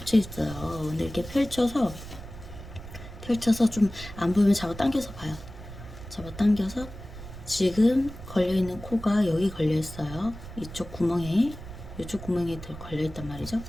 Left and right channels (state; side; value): noise; right; rumble, 13 dB below the sound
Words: 있어요. 근데 이렇게 펼쳐서 좀 안 보이면 잡아 당겨서 봐요. 잡아 당겨서 지금 걸려 있는 코가 여기 걸려 있어요. 이쪽 구멍에 걸려 있단 말이죠.